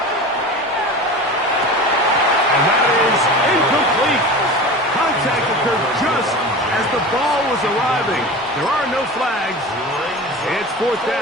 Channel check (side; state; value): both; normal; correlation 0.33